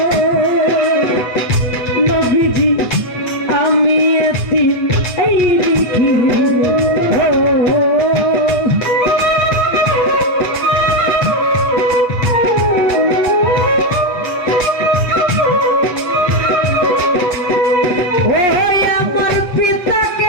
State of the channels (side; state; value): right; late; 8.3 ms